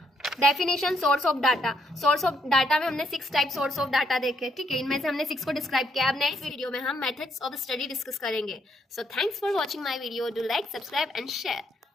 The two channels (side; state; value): both; normal; correlation 0.73